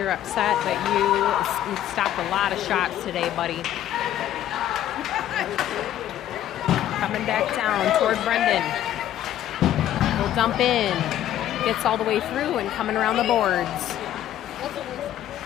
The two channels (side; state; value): right; quieter; 12.0 dB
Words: upset, but you stopped a lot of shots today, buddy. Coming back down toward Brendan. He'll dump in. Gets all the way through and coming around the boards.